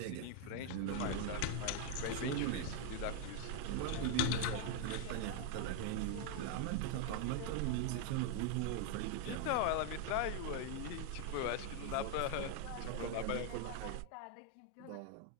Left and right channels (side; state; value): both; different; correlation 0.00